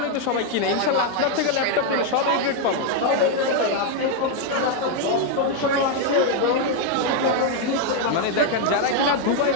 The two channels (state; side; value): different; both; correlation 0.01